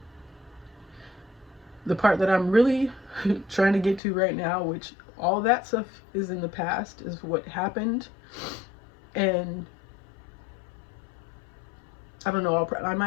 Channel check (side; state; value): right; drops out; at 4.0 s